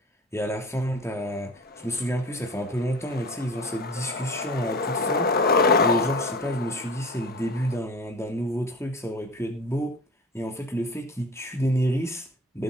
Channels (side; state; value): both; normal; correlation 0.36